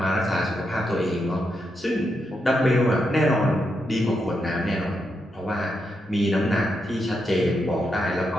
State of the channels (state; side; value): normal; both; correlation 0.83